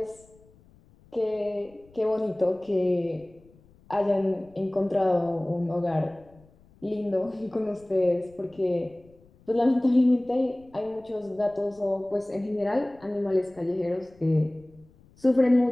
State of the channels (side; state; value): left; noise; rumble, 28 dB below the sound